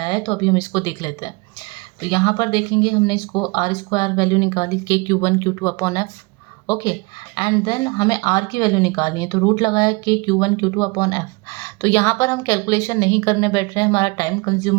है, तो अभी हम इसको देख लेते हैं। तो यहाँ पर देखेंगे हमने इसको R स्क्वायर वैल्यू निकाली के Q1 Q2 upon F। Okay, and then हमें R की वैल्यू निकालनी है तो रूट लगाया के Q1 Q2 अपॉन F। तो यहाँ पर हम कैलकुलेशन नहीं करने बैठ रहे हैं, हमारा टाइम कंज्यूम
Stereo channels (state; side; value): quieter; left; 27.3 dB